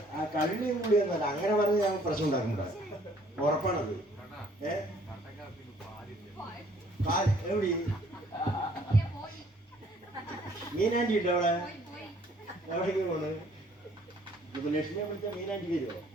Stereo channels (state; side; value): normal; both; correlation 0.60